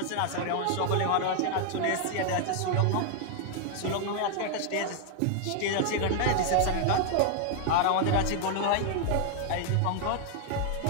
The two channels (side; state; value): both; different; correlation 0.00